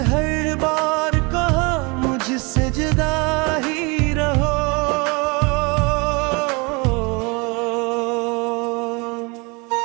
हर बार कहा मुझसे जुदा ही रहो।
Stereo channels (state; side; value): quieter; left; 29.1 dB